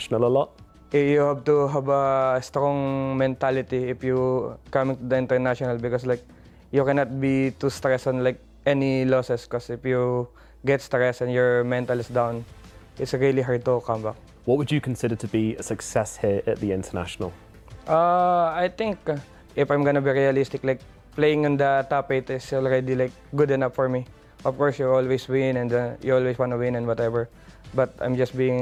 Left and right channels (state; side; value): identical; both; correlation 1.00